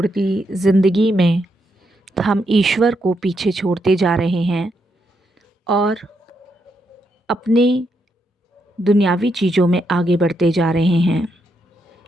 जिंदगी में हम ईश्वर को पीछे छोड़ते जा रहे हैं और अपने दुनियावी चीज़ों में आगे बढ़ते जा रहे हैं।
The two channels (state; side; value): normal; both; correlation 0.80